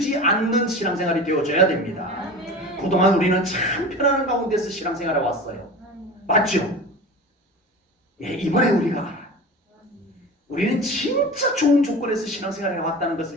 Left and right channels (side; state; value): both; normal; correlation 0.33